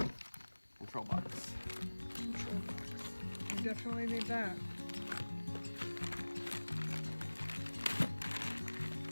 Control box. Control box. You definitely need that.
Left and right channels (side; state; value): both; inverted; correlation -1.00